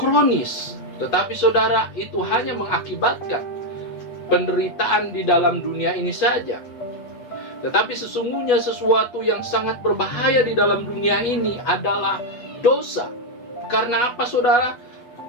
Tetapi saudara, itu hanya mengakibatkan penderitaan di dalam dunia ini saja. Tetapi sesungguhnya sesuatu yang sangat berbahaya di dalam dunia ini adalah dosa. Karena apa, saudara?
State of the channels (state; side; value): late; right; 8.2 ms